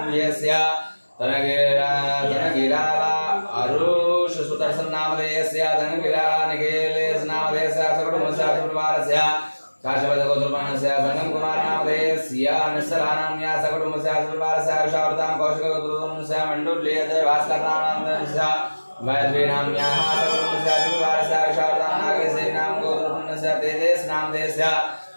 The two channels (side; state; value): both; inverted; correlation -1.00